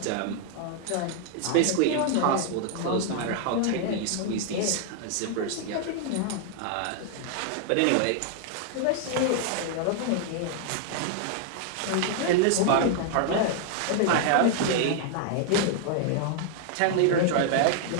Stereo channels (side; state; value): both; different; correlation 0.00